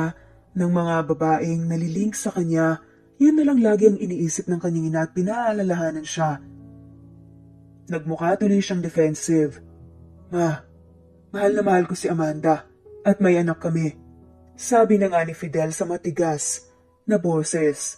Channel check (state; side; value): identical; both; correlation 1.00